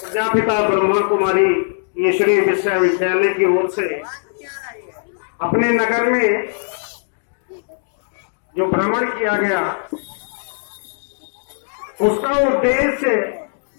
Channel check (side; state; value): right; silent; digital silence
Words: प्रजापिता ब्रह्मा कुमारी ईश्वरीय विश्वविद्यालय की ओर से अपने नगर में जो भ्रमण किया गया, उसका उद्देश्य